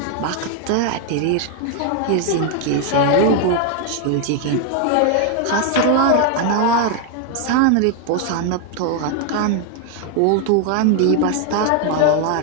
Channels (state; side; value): different; both; correlation 0.00